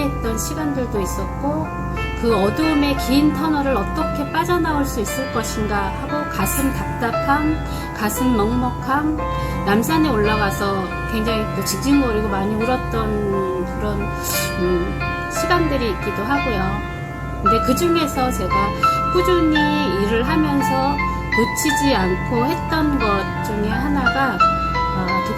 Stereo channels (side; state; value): both; identical; correlation 1.00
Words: 시간들도 있었고, 그 어두움의 긴 터널을 어떻게 빠져나올 수 있을 것인가 하고 가슴 답답함, 가슴 먹먹함, 남산에 올라가서 굉장히 또 징징거리고 많이 울었던 그런 시간들이 있기도 하고요. 근데 그 중에서 제가 꾸준히 일을 하면서 놓치지 않고 했던 것 중에 하나가